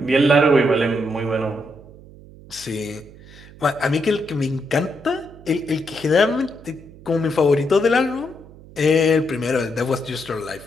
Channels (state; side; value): noise; right; hum, 20 dB below the sound